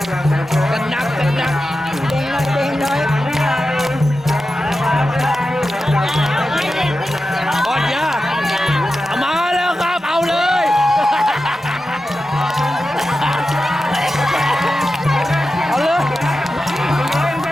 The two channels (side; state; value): both; normal; correlation 0.92